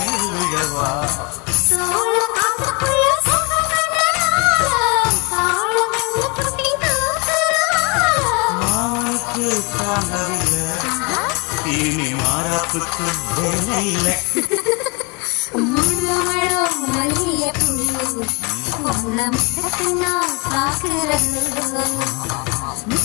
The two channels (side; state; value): right; quieter; 30.2 dB